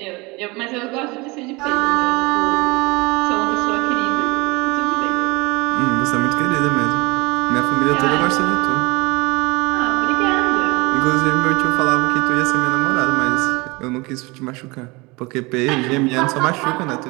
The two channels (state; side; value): quieter; left; 25.1 dB